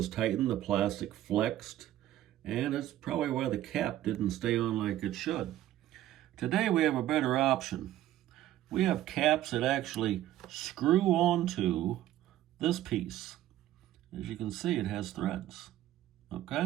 tightened, the plastic flexed, and it's probably why the cap didn't stay on like it should. Today, we have a better option. We have caps that actually screw onto this piece. As you can see, it has threads.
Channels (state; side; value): quieter; left; 13.5 dB